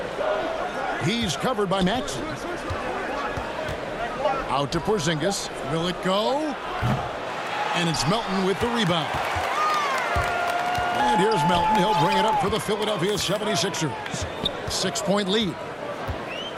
He's covered by Maxey. Out to Porzingis. Will it go? And it's Melton with the rebound. And here's Melton. He'll bring it up for the Philadelphia 76ers. 6-point lead.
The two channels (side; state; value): both; identical; correlation 1.00